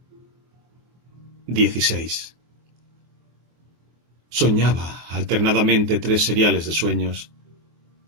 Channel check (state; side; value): late; left; 24 ms